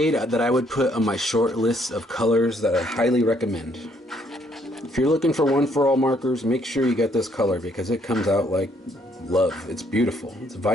that I would put on my short list of colors that I highly recommend. If you're looking for one for all markers, make sure you get this color because it comes out like love. It's beautiful. It's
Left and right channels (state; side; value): normal; both; correlation 0.68